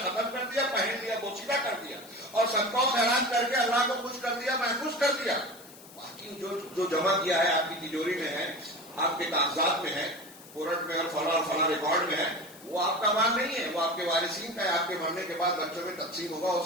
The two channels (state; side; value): noise; left; hiss, 20 dB below the sound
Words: ختم کر دیا، پہن لیا، بوسیدہ کر دیا، اور صدقہ و خیرات کر کے اللہ کو خوش کر دیا، محفوظ کر دیا. باقی جو جمع کیا ہے آپ کی تجوری میں ہے، آپ کے کاغذات میں ہے، کورٹ میں اور فلاں ریکارڈ میں ہے، وہ آپ کا مال نہیں ہے، وہ آپ کے وارثین کا ہے. آپ کے مرنے کے بعد بچوں میں تقسیم ہوگا، ہو